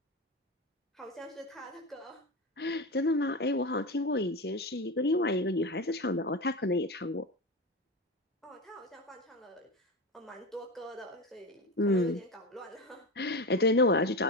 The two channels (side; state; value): both; normal; correlation 0.21